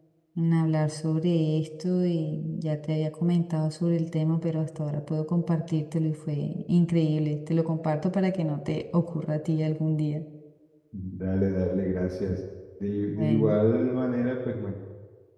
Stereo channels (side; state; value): both; identical; correlation 1.00